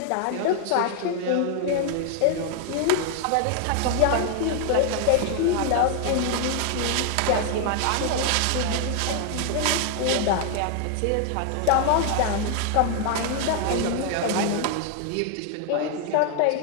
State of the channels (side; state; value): both; different; correlation 0.00